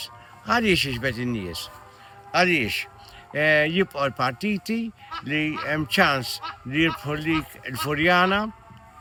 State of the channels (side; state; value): both; identical; correlation 1.00